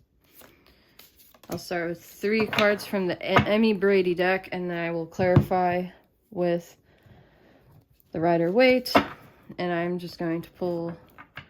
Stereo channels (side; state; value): both; identical; correlation 1.00